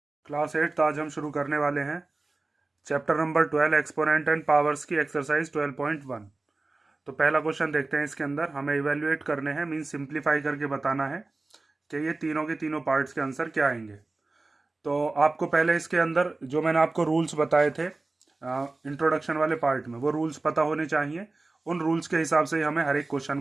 Class 8 आज हम शुरू करने वाले हैं chapter number 12 exponent and powers की एक्सरसाइज 12.1। तो पहला क्वेश्चन देखते हैं। इसके अंदर हमें इवेल्युएट करने हैं, मीन सिंप्लीफाई करके बताना है कि ये तीनों के तीनों पार्ट्स के आंसर क्या आएंगे। तो आपको पहले इसके अंदर जो मैंने आपको रूल्स बताए थे इंट्रोडक्शन वाले पार्ट में, वो रूल्स पता होने चाहिए। उन रूल्स के हिसाब से ही हमें हर एक क्वेश्चन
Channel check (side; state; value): left; quieter; 3.3 dB